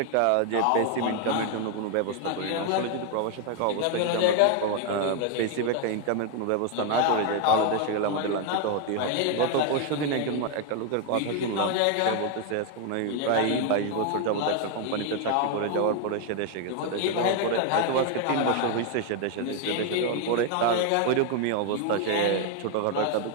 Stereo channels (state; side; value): different; both; correlation 0.01